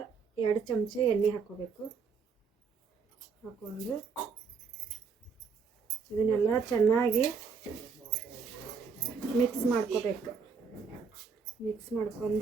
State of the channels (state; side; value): quieter; left; 5.5 dB